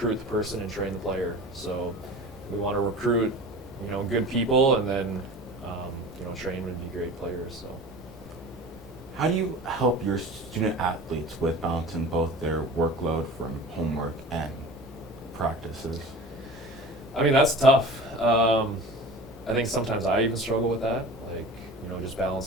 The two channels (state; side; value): normal; both; correlation 0.37